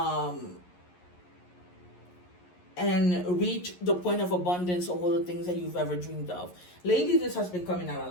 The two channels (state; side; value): late; right; 11 ms